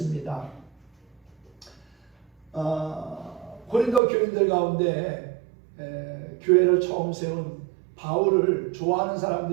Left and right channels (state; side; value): drops out; left; at 4.0 s